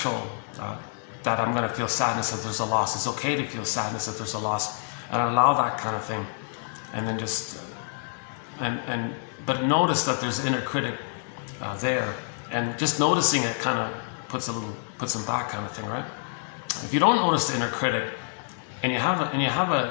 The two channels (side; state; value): right; silent; 60 dB below the other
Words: that I'm going to feel sadness if there's a loss. It's okay to feel sadness if there's a loss, and allow that kind of thing. And then just, but notice that there's inner critic there, and just noticing it kind of puts them back, kind of thing, right? If you don't notice the inner critic, and you have